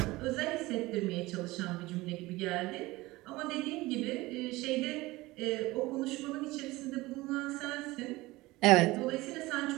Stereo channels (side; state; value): left; quieter; 20.0 dB